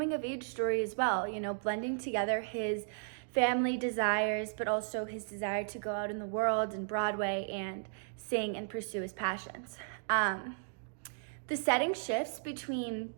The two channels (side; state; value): left; silent; digital silence